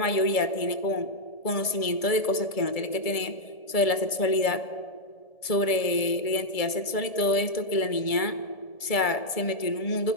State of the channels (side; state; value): right; late; 1.7 ms